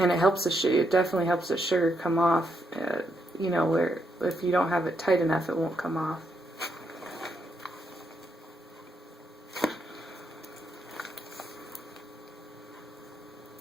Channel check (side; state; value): both; normal; correlation 0.79